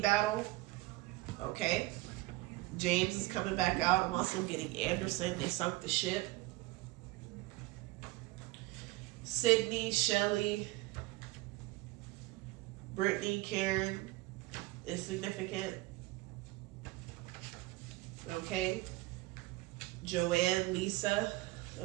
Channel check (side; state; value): left; quieter; 20.0 dB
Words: Okay. James is coming back out. I'm also getting Anderson. They sunk the ship. Sydney, Shelley, Brittany, Karen is significant. Okay. Joanne, Lisa.